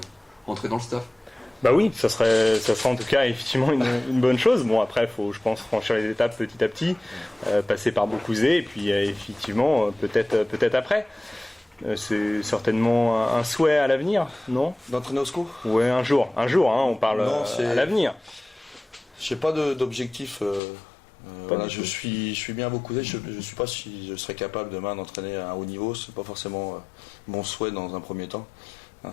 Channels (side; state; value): right; drops out; at 20.6 s